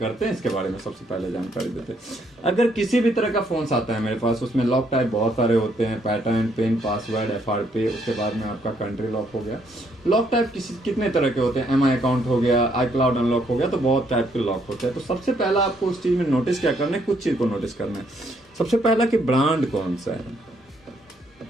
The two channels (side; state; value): both; normal; correlation 0.71